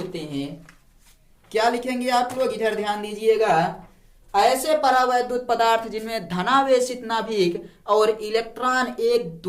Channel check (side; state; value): both; identical; correlation 1.00